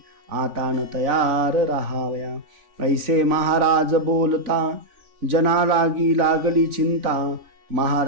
आता न तयार राहावया. ऐसे महाराज बोलता जना लागली चिंता.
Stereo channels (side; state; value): left; late; 3.5 ms